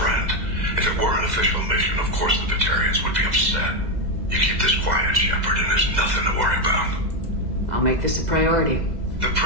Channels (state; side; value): late; left; 2.0 ms